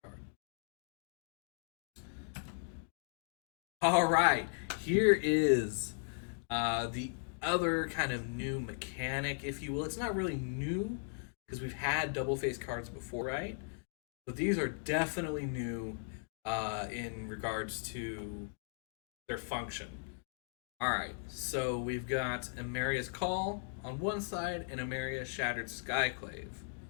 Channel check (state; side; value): silent; right; digital silence